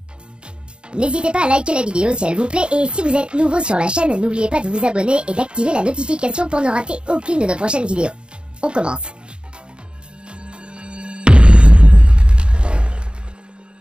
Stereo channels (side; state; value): left; late; 0.052 ms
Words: N'hésitez pas à liker la vidéo si elle vous plaît et si vous êtes nouveau sur la chaîne, n'oubliez pas de vous abonner et d'activer la notification pour ne rater aucune de nos prochaines vidéos. On commence.